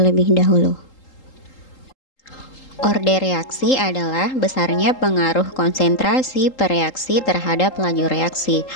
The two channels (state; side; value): late; right; 3.8 ms